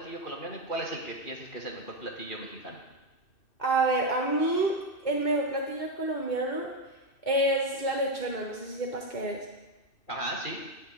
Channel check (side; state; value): right; late; 2.6 ms